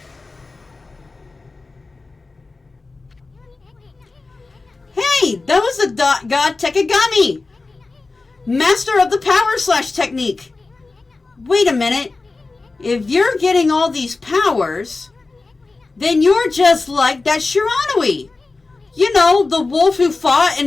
Hey, that was the god Tekagami, master of the power slash technique. Wait a minute. If you're getting all these powers, then you're just like that Shiranui. You know, the wolf who fought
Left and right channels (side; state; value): right; quieter; 3.7 dB